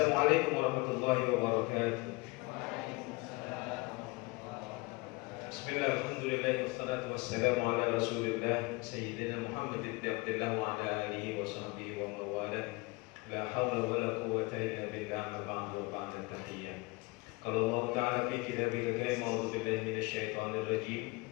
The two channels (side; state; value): right; quieter; 25.7 dB